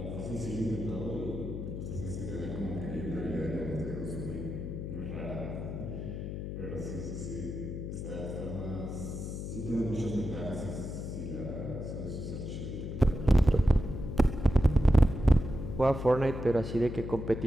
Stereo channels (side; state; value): left; noise; hum, 6 dB below the sound